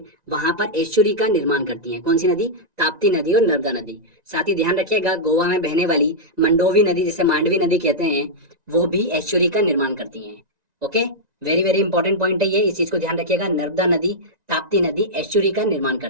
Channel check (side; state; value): left; late; 1.9 ms